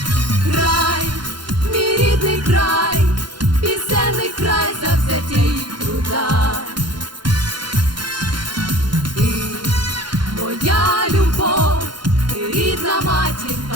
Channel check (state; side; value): late; left; 0.71 ms